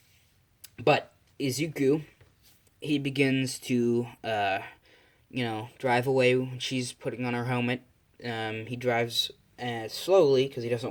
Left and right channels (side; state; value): both; identical; correlation 1.00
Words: Izuku, he begins to, drive away when she's putting on her helmet. He drives slowly because he